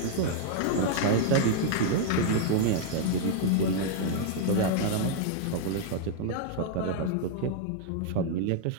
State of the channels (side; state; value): both; different; correlation -0.01